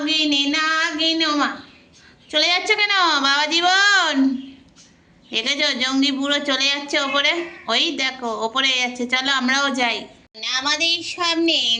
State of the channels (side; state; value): both; identical; correlation 1.00